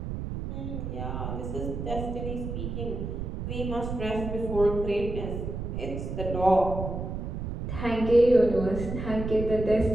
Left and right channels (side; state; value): right; noise; rumble, 5 dB below the sound